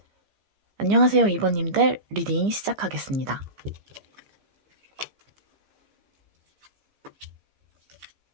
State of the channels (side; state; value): left; late; 15 ms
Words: 안녕하세요, 2번님들 리딩 시작하겠습니다.